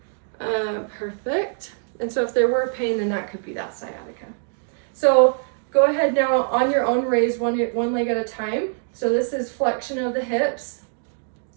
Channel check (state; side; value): silent; left; digital silence